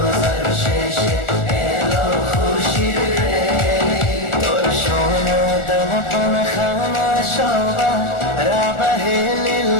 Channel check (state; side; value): late; right; 1.4 ms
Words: শেষে এলো খুশির ঈদ। তোর সোনা দানা পানা খানা সবা রাবাহে